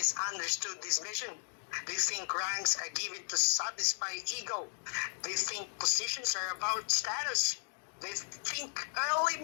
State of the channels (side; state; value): right; silent; 54 dB below the other